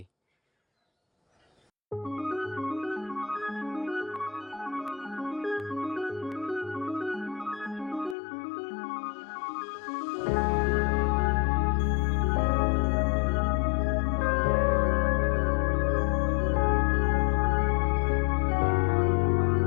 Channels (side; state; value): right; drops out; at 8.2 s